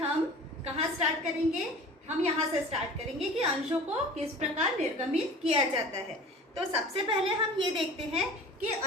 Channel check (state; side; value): normal; both; correlation 0.41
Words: कहाँ स्टार्ट करेंगे? हम यहाँ से स्टार्ट करेंगे कि अंशों को किस प्रकार निर्गमित किया जाता है। तो सबसे पहले हम ये देखते हैं कि